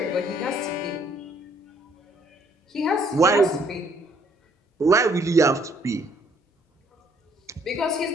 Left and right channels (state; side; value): normal; both; correlation 0.65